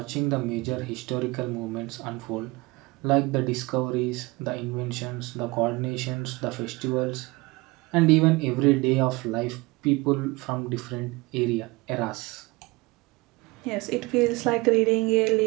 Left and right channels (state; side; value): quieter; left; 23.8 dB